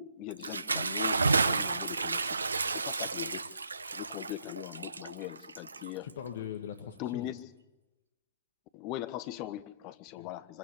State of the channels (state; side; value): inverted; both; correlation -0.70